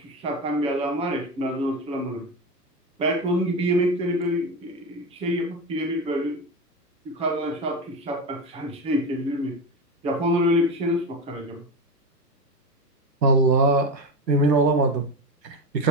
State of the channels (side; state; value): both; normal; correlation 0.20